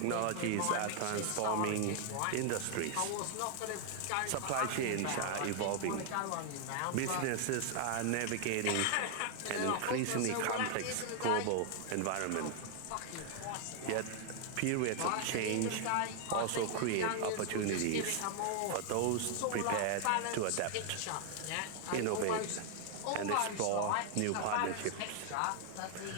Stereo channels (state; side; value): different; both; correlation 0.00